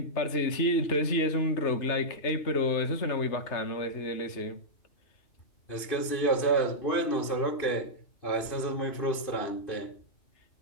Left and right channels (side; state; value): right; late; 2.5 ms